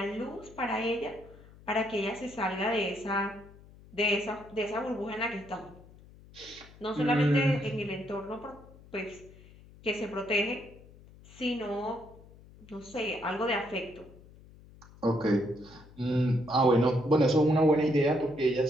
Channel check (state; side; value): noise; left; hum, 22 dB below the sound